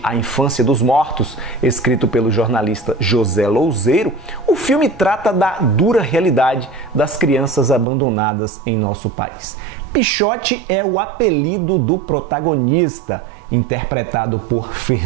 a Infância dos Mortos, escrito pelo jornalista José Louzeiro, o filme trata da dura realidade das crianças abandonadas em nosso país. Pichote é o apelido do protagonista, interpretado por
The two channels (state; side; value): drops out; left; at 7.9 s